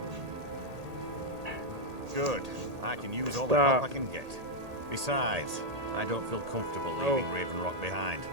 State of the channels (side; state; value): left; late; 1.8 ms